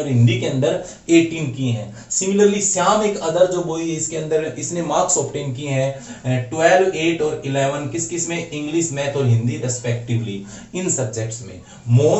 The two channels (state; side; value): identical; both; correlation 1.00